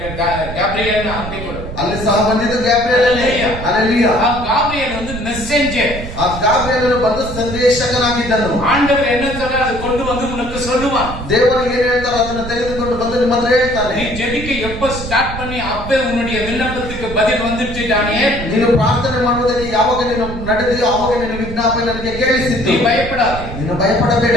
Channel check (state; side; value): noise; right; rumble, 9 dB below the sound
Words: கேப்ரியல் அப்படி கொடு. ಅಲ್ಲಿ ಸಹ ಬಂದಿದ್ದು ಗ್ಯಾಬ್ರಿಯೇಲನೇ. ಹಲ್ಲೆಲೂಯಾ. ಆ ಗಾಬ್ರಿಯಲ್ வந்து மெசேஞ்சர். ಆ ಗ್ಯಾಬ್ರಿಯೇಲನು ಬಂದು ಸಂದೇಶಕನಾಗಿದ್ದನು. ஆண்டவர் என்ன சொல்றார் அது கொண்டு வந்து உனக்கு சொல்லுவான். ದೇವರು ಏನು ಹೇಳ್ತಾರೋ ಅದನ್ನ ತೆಗೆದುಕೊಂಡು ಬಂದು ನಿಮ್ಮ ಹತ್ರ ಹೇಳ್ತಾನೆ. நீ ஜெபிக்க எப்ப ஸ்டார்ட் பண்ணி அப்பே உன்னுடைய விண்ணப்பத்துக்கு பதில் வந்துருச்சு தானியேல். ನೀನು ಪ್ರಾರ್ಥನೆ ಮಾಡುವುದಕ್ಕೆ ಯಾವಾಗ ನೀನು ನಡೆದಿಯೋ ಆವಾಗ ನಿನ್ನ ವಿಜ್ಞಾಪನೆ ನನಗೆ ಕೇಳಿಸಿತು. நீ பயப்படாதே. ನೀನು ಭಯಪಡಬೇಡ.